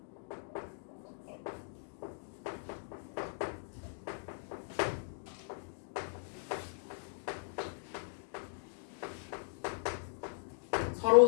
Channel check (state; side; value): silent; right; digital silence